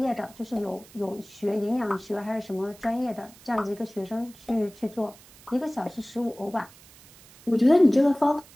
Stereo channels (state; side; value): noise; right; hiss, 23 dB below the sound